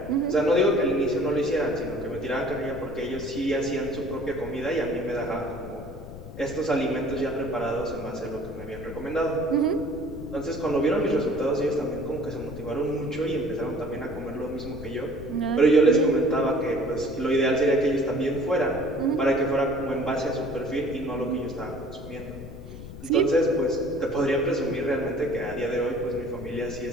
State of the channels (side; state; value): left; noise; rumble, 13 dB below the sound